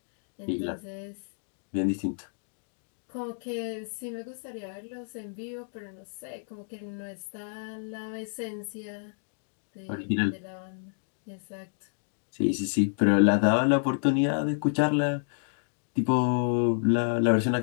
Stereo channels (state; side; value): silent; right; digital silence